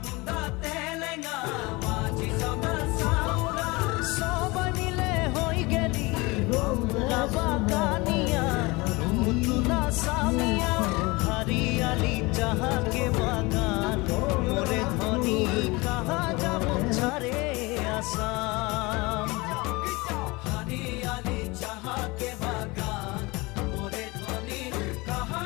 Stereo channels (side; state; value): right; quieter; 24.1 dB